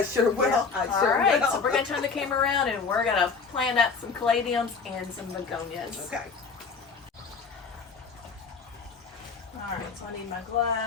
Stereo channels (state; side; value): quieter; right; 5.1 dB